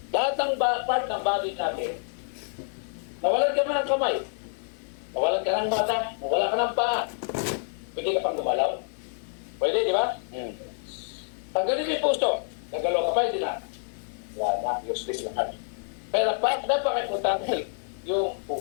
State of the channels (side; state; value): right; silent; digital silence